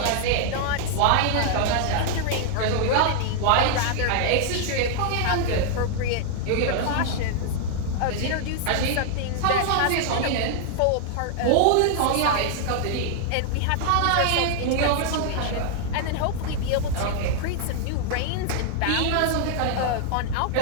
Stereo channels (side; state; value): both; different; correlation -0.01